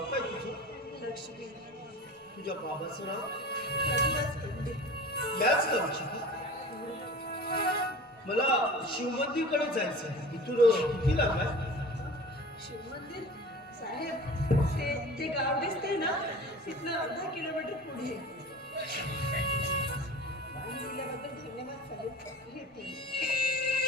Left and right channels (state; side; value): normal; both; correlation 0.38